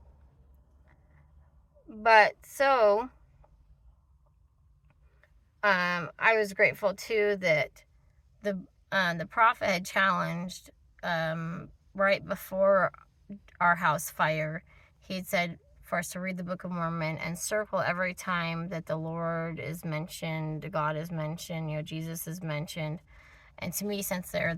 so, I was grateful too that the prophet had challenged, right before our house fire, he had said for us to read the Book of Mormon and circle every time that the Lord is mentioned, God is mentioned, Jesus is mentioned. And to me, since they're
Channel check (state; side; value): identical; both; correlation 1.00